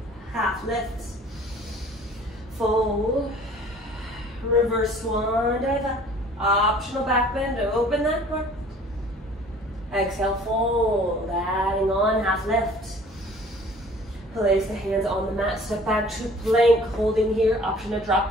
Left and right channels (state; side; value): normal; both; correlation 0.51